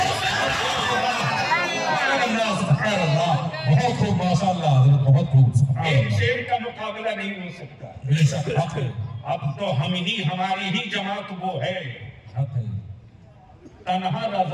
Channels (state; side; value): identical; both; correlation 1.00